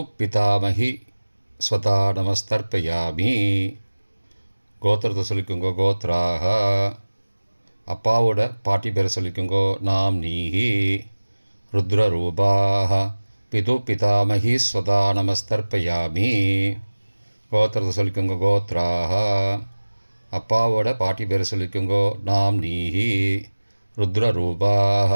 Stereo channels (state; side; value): inverted; both; correlation -1.00